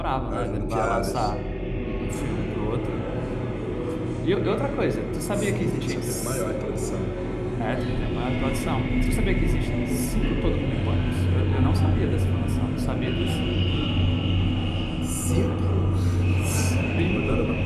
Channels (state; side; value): identical; both; correlation 1.00